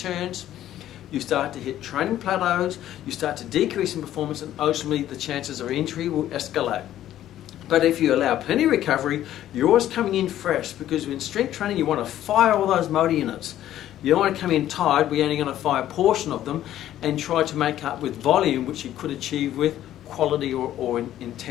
you start to hit training plateaus, you start to decrease in performance, and ultimately the chances of injury will escalate. But if you allow plenty of recovery, you're always coming in fresh, because in strength training you want to fire all those motor units. You don't want to come in tired, we're only going to fire a portion of them and try to make up with volume, which you could achieve with quality or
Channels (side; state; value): right; quieter; 12.4 dB